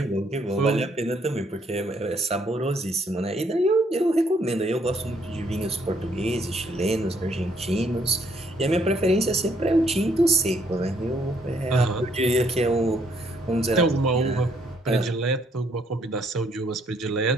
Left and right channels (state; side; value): normal; both; correlation 0.69